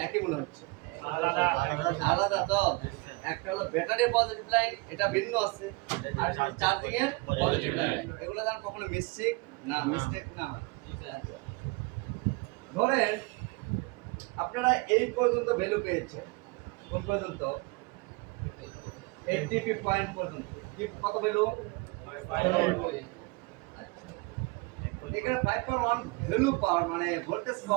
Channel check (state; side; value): quieter; left; 26.3 dB